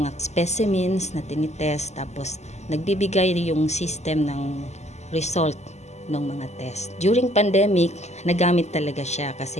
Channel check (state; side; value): late; right; 0.33 ms